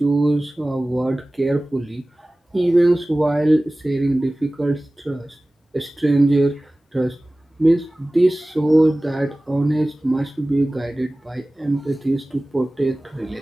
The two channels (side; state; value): both; normal; correlation 0.98